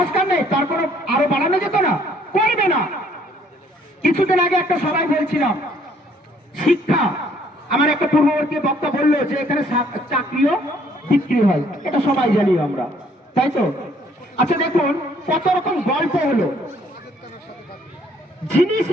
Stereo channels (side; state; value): both; normal; correlation 0.63